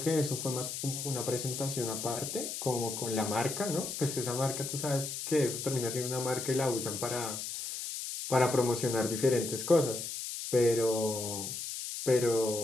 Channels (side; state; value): left; noise; hiss, 5 dB below the sound